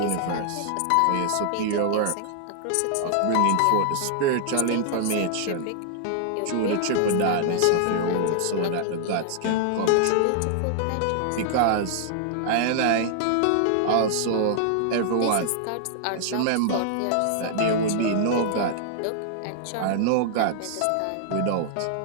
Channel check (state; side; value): different; both; correlation -0.01